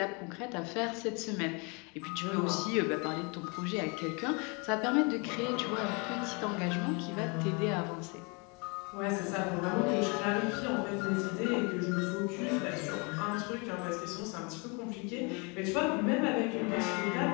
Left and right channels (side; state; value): right; quieter; 31.5 dB